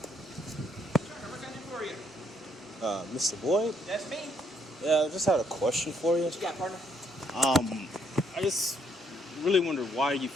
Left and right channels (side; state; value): both; normal; correlation 0.70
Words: What can I do for you? Mr. Boyd? That's me. Yeah, I just had a question for you. What you got, partner? I just really wondered why you